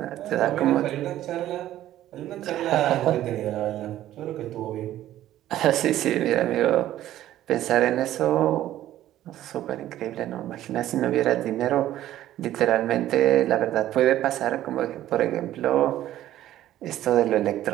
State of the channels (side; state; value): left; quieter; 13.3 dB